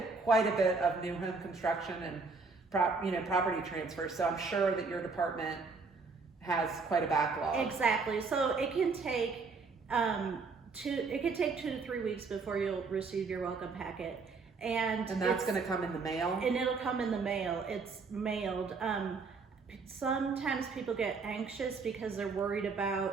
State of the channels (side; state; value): left; quieter; 4.5 dB